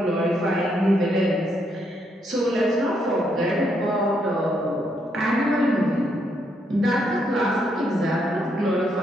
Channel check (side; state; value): both; normal; correlation 0.76